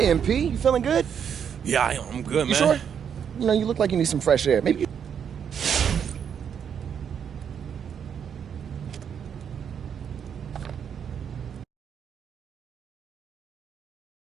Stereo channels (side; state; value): left; quieter; 7.9 dB